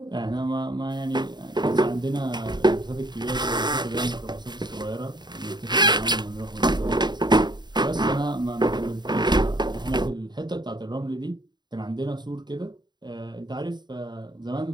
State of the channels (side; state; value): left; late; 0.21 ms